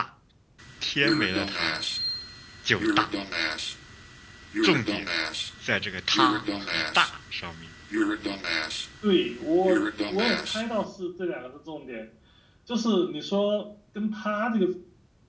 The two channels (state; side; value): identical; both; correlation 1.00